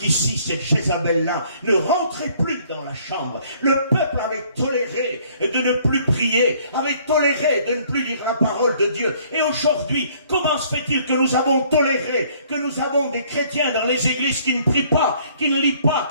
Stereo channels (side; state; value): both; inverted; correlation -0.60